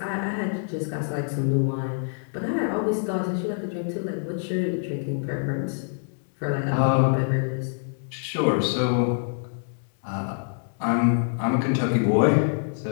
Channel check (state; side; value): silent; right; digital silence